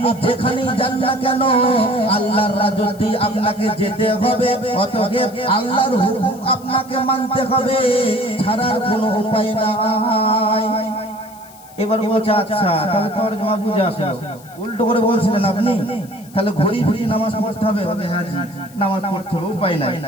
যেখানেই যান না কেন আল্লাহর রাজত্বে আপনাকে যেতে হবে, অতএব আল্লাহর হুকুম আপনাকে মানতে হবে, ছাড়ার কোনো উপায় নাই। এবার বলছে আচ্ছা তাহলে তরজমা বুঝে আসলো, উল্টো করে বলছিলেন আপনি, তাহলে ঘড়ি ঘড়ি নামাজ পড়তে হবে? হ্যাঁ জি, নামাজ পড়তে হবে, উপায় নাই।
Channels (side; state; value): left; noise; hiss, 23 dB below the sound